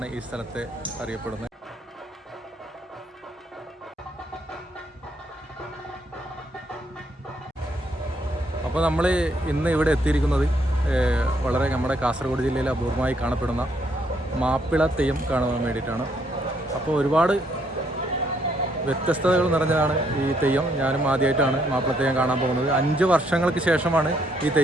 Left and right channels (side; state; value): both; normal; correlation 0.72